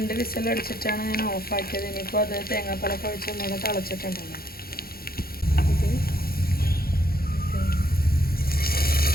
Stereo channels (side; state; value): right; late; 0.44 ms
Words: വിസിൽ അടിച്ചിട്ടാണ് ഞാൻ ഓഫാക്കിയത്. ഇനിയിപ്പോൾ അത് തേങ്ങാപ്പാലൊക്കെ ഒഴിച്ച് ഒന്നുകൂടെ തിളച്ചിട്ടുണ്ടല്ലോ.